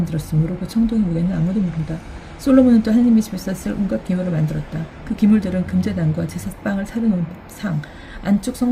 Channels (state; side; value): identical; both; correlation 1.00